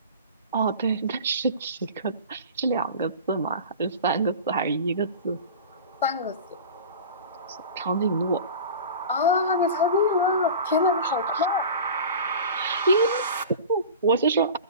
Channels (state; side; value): inverted; both; correlation -0.35